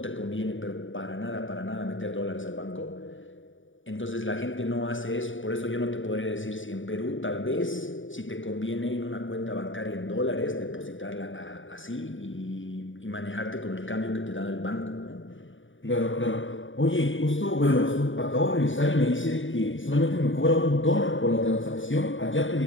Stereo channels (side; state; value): right; late; 0.57 ms